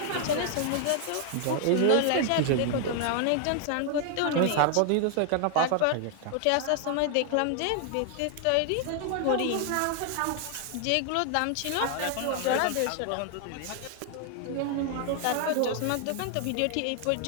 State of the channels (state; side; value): different; both; correlation 0.00